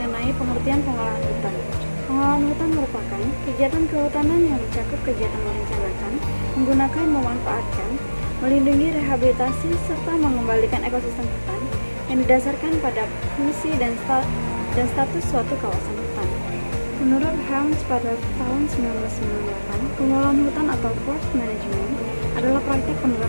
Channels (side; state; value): both; inverted; correlation -1.00